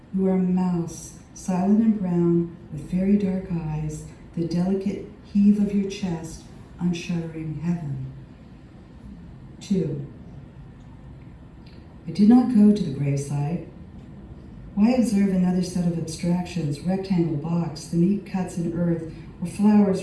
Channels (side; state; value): both; identical; correlation 1.00